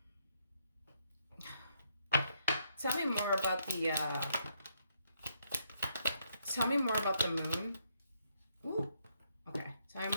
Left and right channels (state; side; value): inverted; both; correlation -0.74